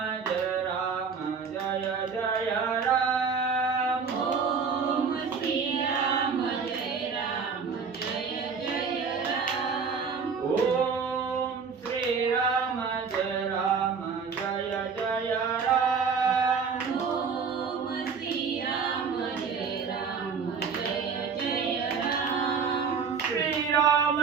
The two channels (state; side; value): quieter; left; 5.6 dB